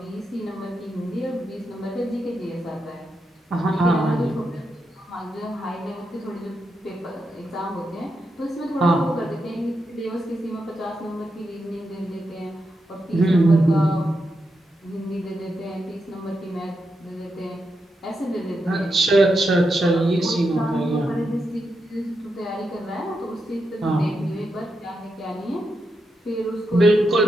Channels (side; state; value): both; normal; correlation 0.85